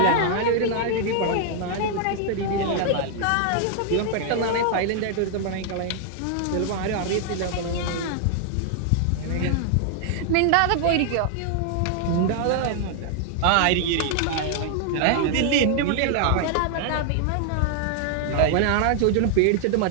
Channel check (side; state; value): both; different; correlation 0.00